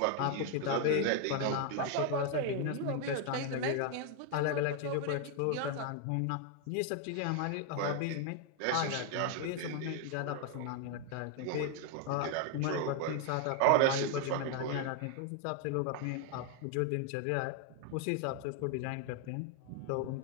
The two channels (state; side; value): different; both; correlation 0.01